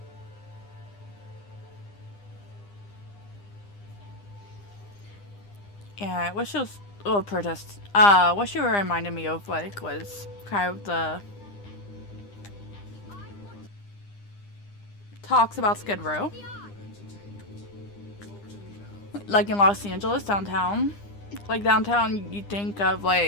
Yeah, what she was, oh, protest. What she reminded me of, like, was kind of the talks about Skid Row. Like in Los Angeles, downtown. Like, downtown, you think of,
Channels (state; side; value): late; right; 9.9 ms